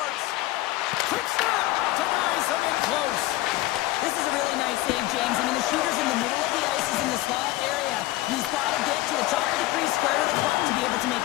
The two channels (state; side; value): quieter; right; 17.6 dB